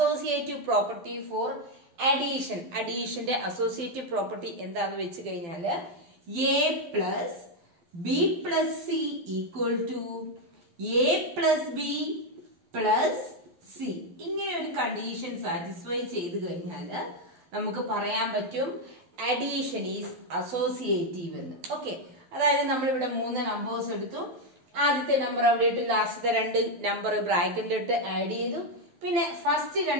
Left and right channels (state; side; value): late; left; 12 ms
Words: പ്രോപ്പർട്ടി ഫോർ അഡീഷൻ. അഡീഷന്റെ അസോസിയേറ്റീവ് പ്രോപ്പർട്ടി എന്താന്ന് വെച്ച് കഴിഞ്ഞാല് A plus B plus C equal to A plus B plus C. ഇങ്ങനെ ഒരു കണ്ടീഷൻ സാറ്റിസ്ഫൈ ചെയ്ത് കഴിഞ്ഞാല് നമുക്ക് പറയാൻ പറ്റും അഡീഷൻ ഈസ് അസോസിയേറ്റീവ് എന്ന്. ഓക്കെ, അതായത് നമ്മളിവിടെ 3 നമ്പേഴ്സ് എടുത്തു. ആദ്യത്തെ നമ്പർ അവിടെ ഇട്ട് ലാസ്റ്റത്തെ 2 നമ്പർ ബ്രാക്കറ്റിലിട്ട് ആഡ് ചെയ്തു. പിന്നെ ഫസ്റ്റ്